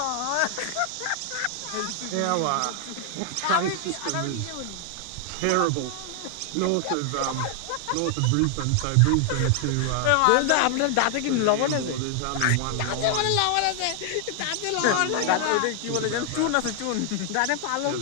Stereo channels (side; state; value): both; different; correlation 0.00